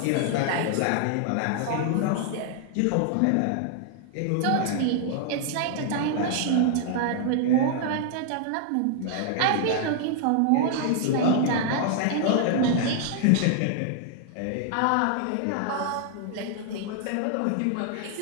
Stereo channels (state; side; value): different; both; correlation 0.00